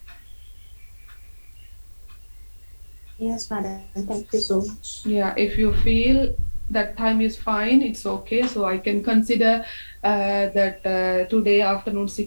Yes, madam. Thank you so much. Yeah, if you feel that time is fine, it's okay. So I can consider that today afternoon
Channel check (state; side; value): inverted; both; correlation -1.00